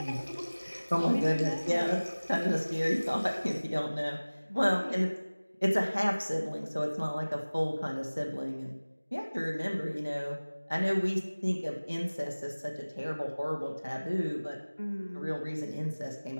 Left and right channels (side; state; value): both; inverted; correlation -1.00